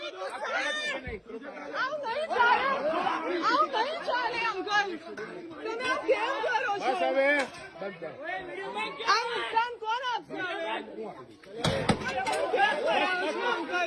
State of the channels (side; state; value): both; identical; correlation 1.00